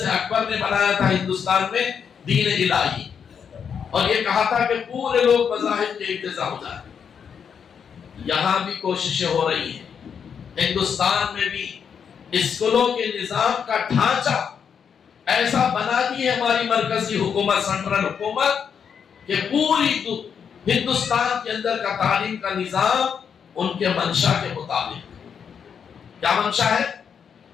اکبر نے بنایا تھا ہندوستان میں دین الہی، اور یہ کہا تھا کہ پورے لوگ مذاہب کے اقتضا ہو جائیں۔ یہاں بھی کوششیں ہو رہی ہیں، ہندوستان میں بھی اسکولوں کے نظام کا ڈھانچہ ایسا بنا دی ہے ہماری مرکزی حکومت، سینٹرل حکومت، کہ پوری ہندوستان کے اندر کا تعلیم کا نظام ان کے منشا کے مطابق۔ کیا منشا ہے؟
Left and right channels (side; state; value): right; quieter; 7.2 dB